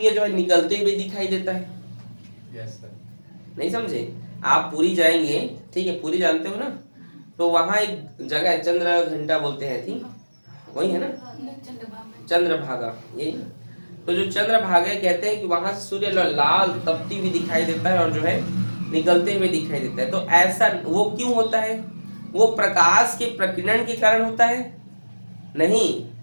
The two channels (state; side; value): inverted; both; correlation -1.00